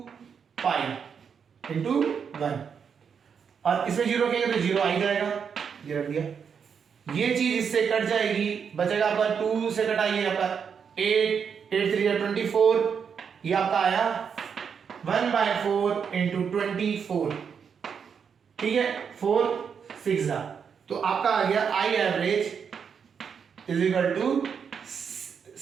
पाई इंटू 1, और इसमें 0 रखेंगे तो 0 आ ही जाएगा, ये रख दिया, ये चीज इससे कट जाएगी, बचेगा आपका 2 से कटाइए आपका 8, 8 3 24, ये आपका आया 1/4 इंटू 24, ठीक है, 4 6 तो आपका आ गया I average is equal to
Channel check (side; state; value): left; quieter; 6.8 dB